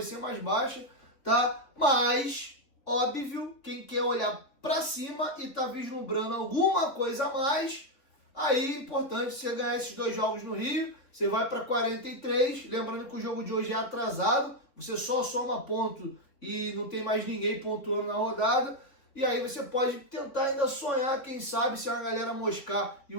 ser mais baixa, tá? Mas, óbvio, quem quer olhar pra cima e tá vislumbrando alguma coisa a mais, aí é importante você ganhar esses 2 jogos no Rio, você vai para 43, lembrando que o jogo de hoje é atrasado, você só soma ponto e não tem mais ninguém pontuando na rodada. E aí você pode tentar ainda sonhar, quem sabe, se a galera moscar e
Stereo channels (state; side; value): late; right; 3.6 ms